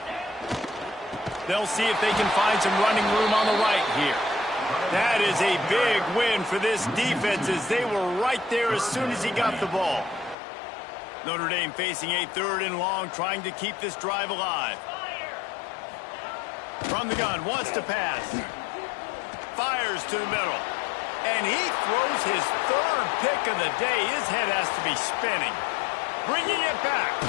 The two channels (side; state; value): right; drops out; at 10.4 s